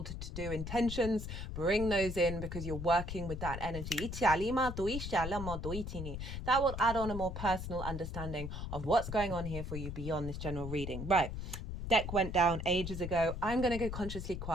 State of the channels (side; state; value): left; noise; rumble, 6 dB below the sound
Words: to do intentions, bring those in because you're working with that energy. That will add on a more personal understanding of what's going on here for you beyond this general reading. Right. Deck went down ages ago. I'm going to go consciously